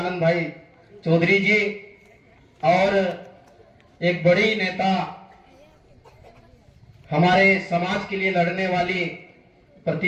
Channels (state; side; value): identical; both; correlation 1.00